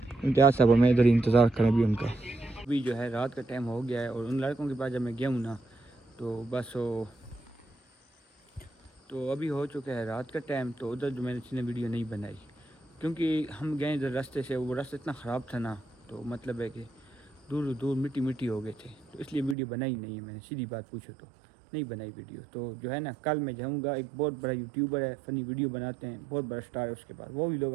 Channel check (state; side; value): drops out; left; at 19.6 s